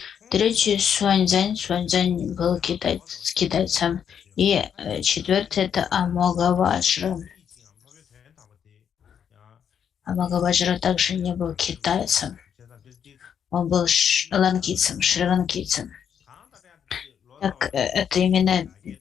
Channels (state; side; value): quieter; right; 8.1 dB